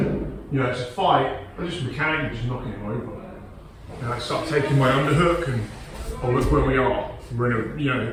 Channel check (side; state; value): both; identical; correlation 1.00